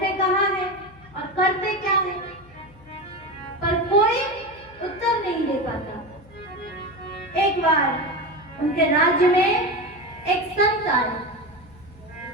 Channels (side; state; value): left; noise; hum, 24 dB below the sound